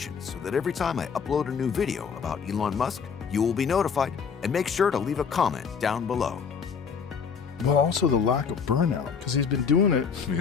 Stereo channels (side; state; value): right; quieter; 6.3 dB